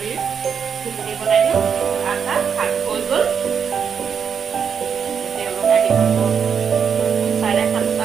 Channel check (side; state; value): left; quieter; 7.0 dB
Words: ঘুগুনি বনাই দিওঁ আটা ভাত হৈ গ'ল তেওঁলোক আহি পাব